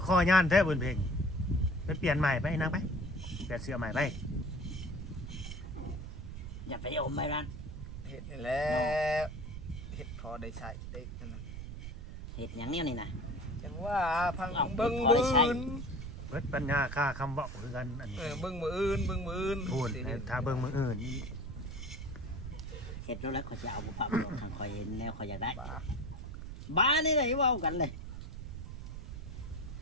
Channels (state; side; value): noise; right; rumble, 8 dB below the sound